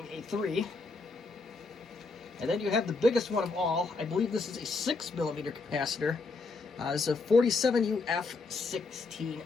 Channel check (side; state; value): right; quieter; 3.9 dB